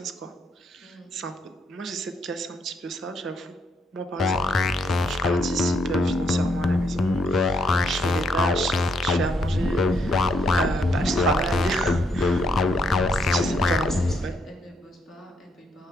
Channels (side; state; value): both; normal; correlation 0.74